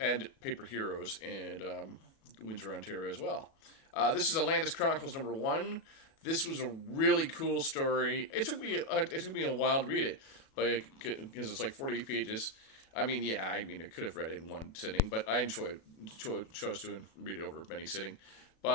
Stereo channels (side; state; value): right; late; 37 ms